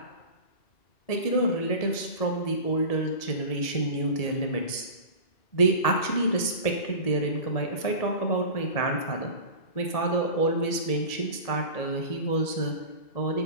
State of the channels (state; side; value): late; right; 1.8 ms